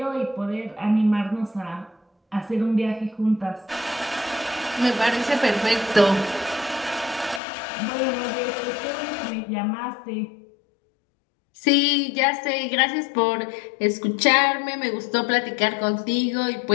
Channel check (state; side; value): drops out; right; at 7.4 s